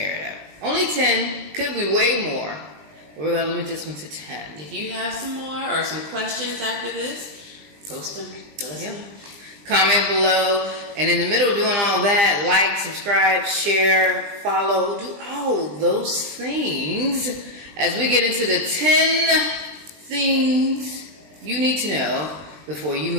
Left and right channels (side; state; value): left; late; 20 ms